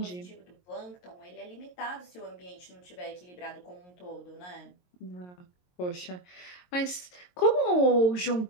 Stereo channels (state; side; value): late; right; 22 ms